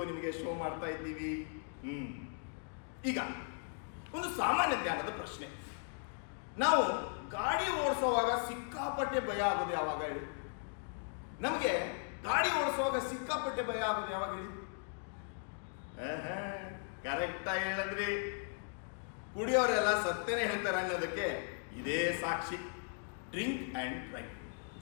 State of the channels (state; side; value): silent; right; 53 dB below the other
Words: ನಿಮಗೆ ಶೋ ಮಾಡ್ತಾ ಇದ್ದೀವಿ. ಈಗ ಒಂದು ಸಾಮಾನ್ಯ ಜ್ಞಾನದ ಪ್ರಶ್ನೆ. ನಾವು ಗಾಡಿ ಓಡಿಸೋವಾಗ ಸಿಕ್ಕಾಪಟ್ಟೆ ಭಯ ಆಗೋದು ಯಾವಾಗ ಹೇಳಿ? ನಮಗೆ ಗಾಡಿ ಓಡಿಸುವಾಗ ಸಿಕ್ಕಾಪಟ್ಟೆ ಭಯ ಆಗೋದು ಯಾವಾಗ ಹೇಳಿ? ಕರೆಕ್ಟಾಗಿ ಹೇಳಿದ್ರಿ. ಕುಡಿಯೋರೆಲ್ಲ ಸತ್ತೇನೆ ಹೇಳ್ತಾರೆ ಅನ್ನೋದಕ್ಕೆ ಇದೇ ಸಾಕ್ಷಿ. Drink and drive.